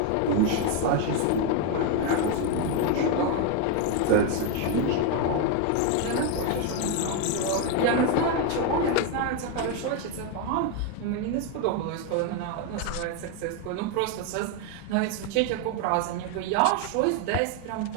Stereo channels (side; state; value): both; different; correlation 0.01